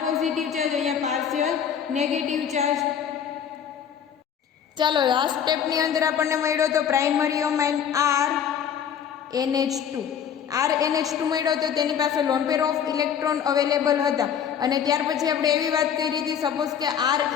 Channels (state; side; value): quieter; right; 8.3 dB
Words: પોઝિટિવ ચાર્જ, અહીંયા પાર્શિયલ નેગેટિવ ચાર્જ. ચાલો લાસ્ટ સ્ટેપની અંદર આપણને મળ્યો તો પ્રાઇમરી અમાઇન RNH2 મળ્યો તો તેની પાસે loan pair of electron available હતા અને ત્યાર પછી આપણે એવી વાત કરી હતી સપોઝ કે